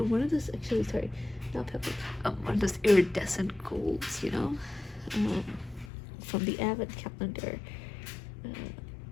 one of those, actually, sorry, not pale gold, one of those iridescent golds, you know, from the Advent calendar.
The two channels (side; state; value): right; drops out; at 5.9 s